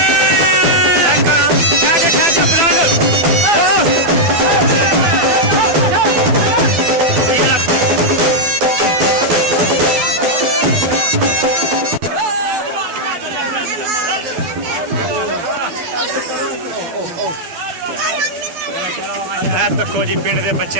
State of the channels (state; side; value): late; left; 12 ms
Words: देखो जी पिंड के